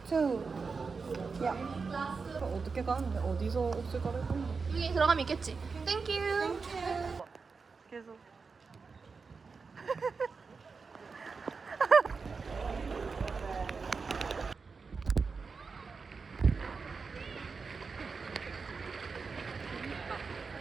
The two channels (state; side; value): quieter; left; 4.8 dB